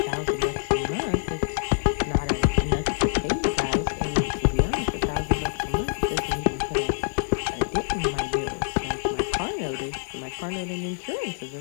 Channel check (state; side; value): silent; right; digital silence